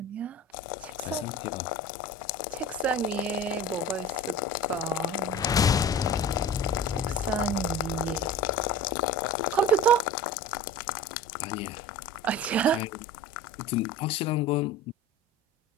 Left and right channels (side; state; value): both; normal; correlation 0.36